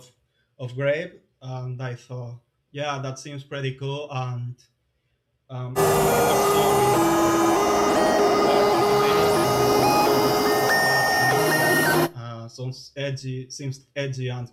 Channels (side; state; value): both; identical; correlation 1.00